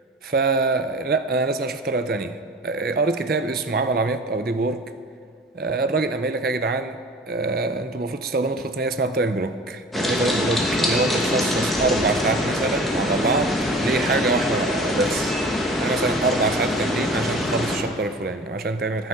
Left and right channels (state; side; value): normal; both; correlation 0.41